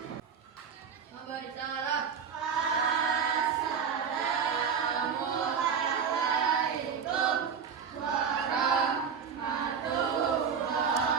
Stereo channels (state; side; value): quieter; left; 6.6 dB